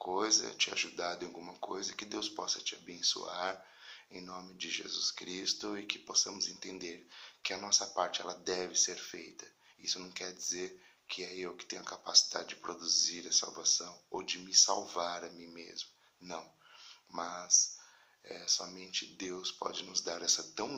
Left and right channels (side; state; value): both; identical; correlation 1.00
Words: te ajudado em alguma coisa, que Deus possa te abençoar em nome de Jesus Cristo e que possamos entender que a nossa parte ela deve ser feita. Isso não quer dizer que é eu que tenho a capacidade de produzir a salvação ou de me salvar a mim mesmo. Não, mas somente Deus pode nos dar essa tão